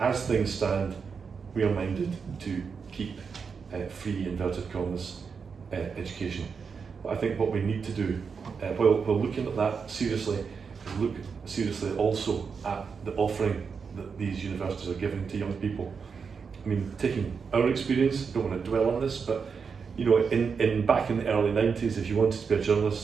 things stand, we are minded to keep free, inverted commas, education. But I think what we need to do, while looking at that seriously, is look seriously also at the offering that these universities are giving to young people. I mean, taking our experience, don't want to dwell on this, but in back in the early 90s, if you wanted to be a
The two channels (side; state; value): left; quieter; 5.7 dB